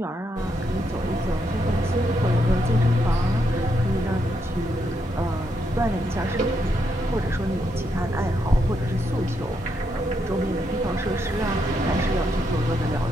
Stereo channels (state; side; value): normal; both; correlation 0.79